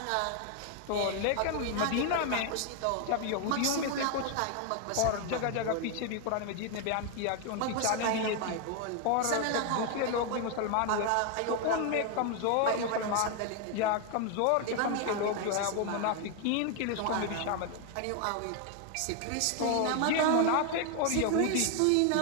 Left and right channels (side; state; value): both; different; correlation 0.01